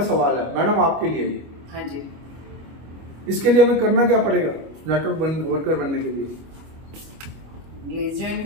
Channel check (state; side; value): late; left; 25 ms